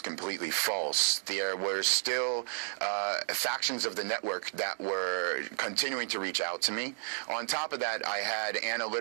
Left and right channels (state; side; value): silent; left; digital silence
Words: completely false, there were still factions of the network that were continuing to reach out to me. On top of that, I had